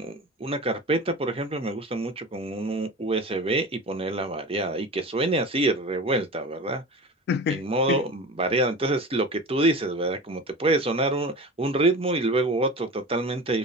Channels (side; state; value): both; normal; correlation 0.33